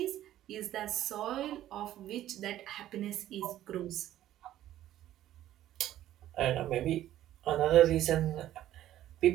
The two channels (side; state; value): left; quieter; 13.0 dB